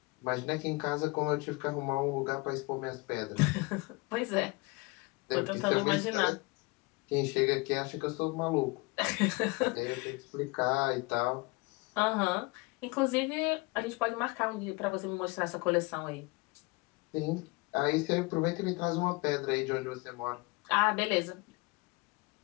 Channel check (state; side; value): quieter; right; 25.3 dB